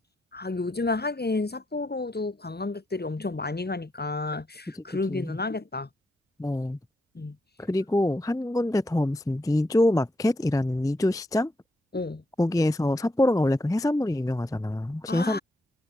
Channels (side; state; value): both; normal; correlation 0.81